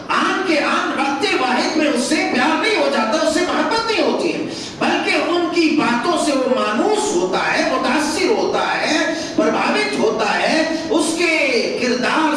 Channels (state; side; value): identical; both; correlation 1.00